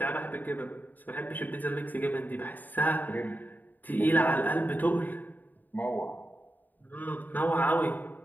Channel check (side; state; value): right; late; 0.087 ms